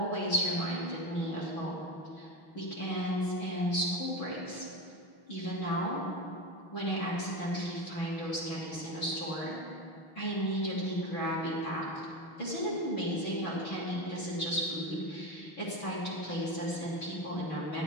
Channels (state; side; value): late; right; 6.3 ms